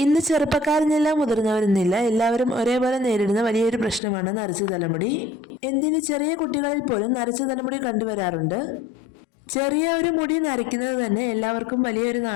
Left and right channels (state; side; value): drops out; right; at 4.0 s